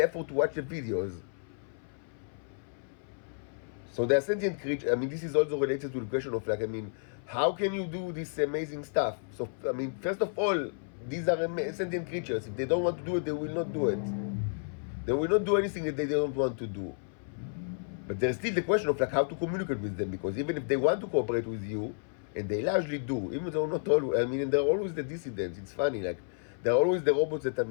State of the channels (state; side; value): silent; right; 56 dB below the other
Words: effort to watch the videos. So they are sentient creatures. This is also related to the question of how can you do this amazing stuff? So first of all, these are sentient creatures. If they don't want to do it, they will not do it. They will not do anything that they don't want to do. But there's still the question of how to communicate with them, because even if they want to cooperate with you, and they largely do, even though not always. And they're always the dissidents. It's funny, they're always the robots that